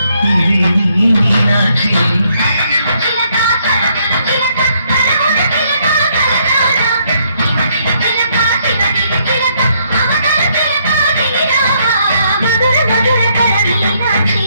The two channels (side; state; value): both; inverted; correlation -0.71